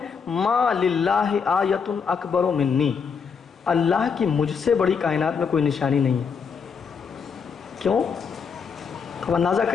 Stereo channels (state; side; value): quieter; right; 6.1 dB